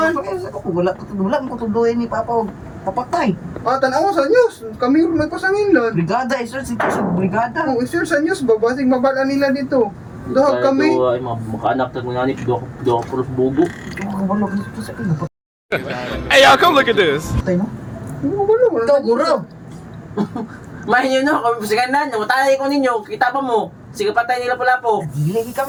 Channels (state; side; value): identical; both; correlation 1.00